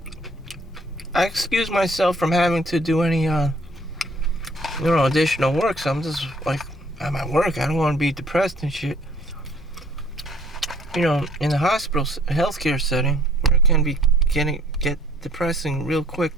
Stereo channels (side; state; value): both; normal; correlation 0.59